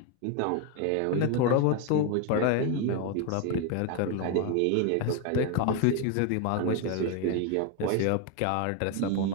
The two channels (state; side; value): different; both; correlation 0.01